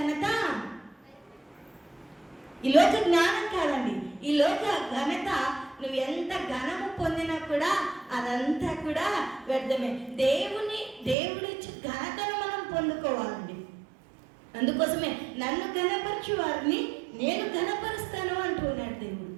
ఈ లోక జ్ఞానం కాదండి, ఈ లోక ఘనత నువ్వు ఎంత ఘనము పొందినా కూడా అదంతా కూడా వ్యర్థమే. దేవుడిచ్చి ఘనతను మనం పొందుకోవాలండి. అందుకోసమే నన్ను ఘనపరచు వారిని నేను ఘనపరుస్తాను అంటున్నాడు దేవుడు.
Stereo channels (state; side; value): drops out; left; at 11.2 s